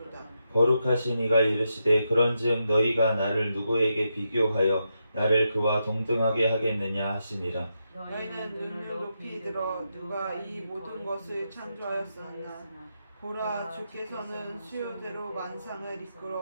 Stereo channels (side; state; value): both; inverted; correlation -0.84